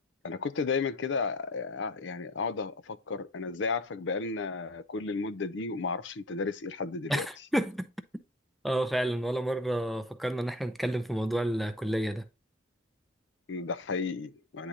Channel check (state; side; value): normal; both; correlation 0.42